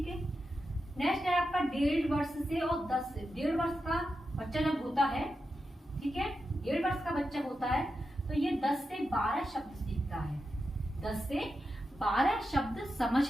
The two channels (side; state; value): both; normal; correlation 0.89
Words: है। नेक्स्ट है आपका 1.5 वर्ष से और 10 से 1.5 वर्ष का बच्चा जब होता है, ठीक है, 1.5 वर्ष का बच्चा होता है, तो ये 10 से 12 शब्द सीखता है, 10 से 12 शब्द समझ